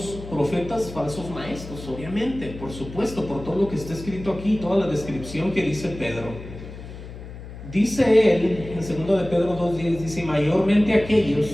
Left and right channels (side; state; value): left; noise; hum, 13 dB below the sound